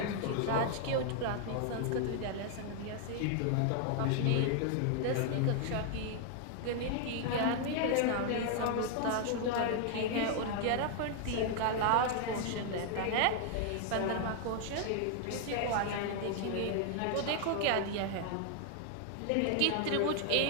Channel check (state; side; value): different; both; correlation 0.00